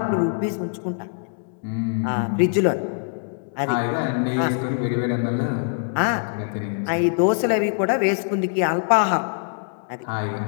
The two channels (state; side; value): silent; right; digital silence